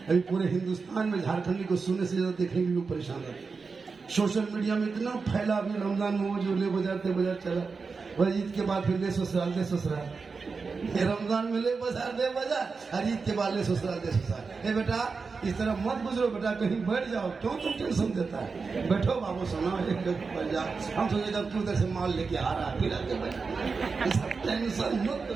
अभी पूरे हिंदुस्तान में झारखंडी को सुनने से ज्यादा देखने के लोग परेशान रहते। सोशल मीडिया में इतना फैला, अभी रमजान में वो जो ले बाजार चला, वह ईद के बाद फिर ले ससुराल दे ससुराल, रमजान में ले बाजार दे बाजार, और ईद के बाद ले ससुराल दे ससुराल। ए बेटा इस तरह मत गुजरो बेटा, कहीं बैठ जाओ, क्यों तुम टेंशन देता है? बैठो बाबू सुना, एक बैठ जाओ। हम सोचेगा तू उधर से माल लेके आ रहा है, फिर आके बैठ, टेंशन मत।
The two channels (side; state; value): left; quieter; 4.7 dB